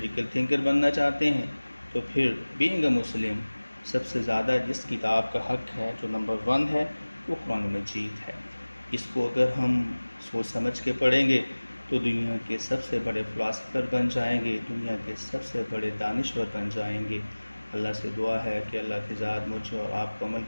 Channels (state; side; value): inverted; both; correlation -1.00